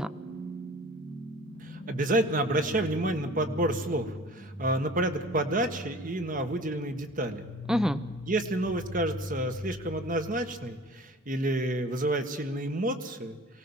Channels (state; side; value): normal; both; correlation 0.45